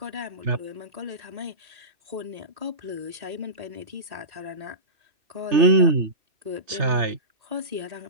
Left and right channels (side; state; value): left; late; 3.3 ms